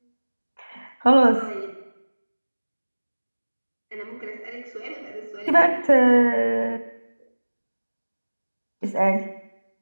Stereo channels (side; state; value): both; inverted; correlation -1.00